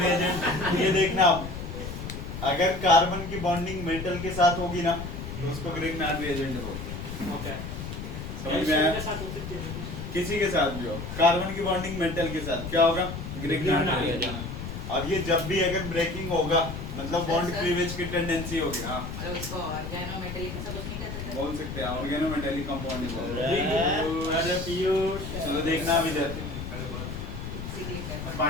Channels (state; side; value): noise; left; rumble, 7 dB below the sound